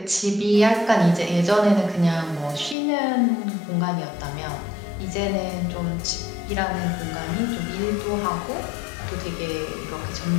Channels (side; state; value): right; drops out; at 2.8 s